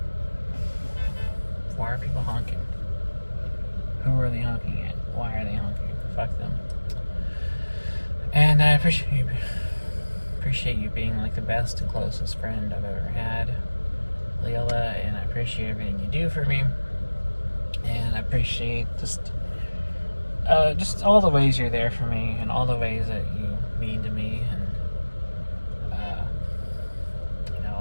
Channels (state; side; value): inverted; both; correlation -1.00